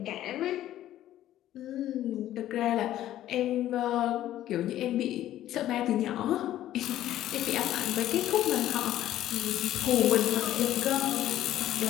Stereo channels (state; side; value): quieter; right; 13.0 dB